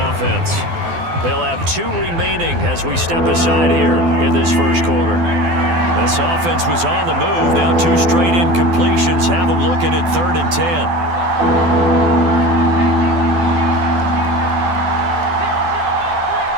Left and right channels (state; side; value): late; left; 12 ms